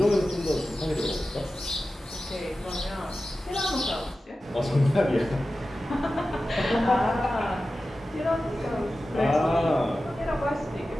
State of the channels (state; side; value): normal; both; correlation 0.94